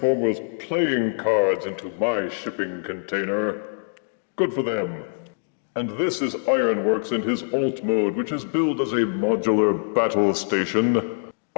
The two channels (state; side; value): silent; right; digital silence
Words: playing cards into my shipping container. Good for them. And this is Ironworks in his alt mode, which is billed as a modular battle station.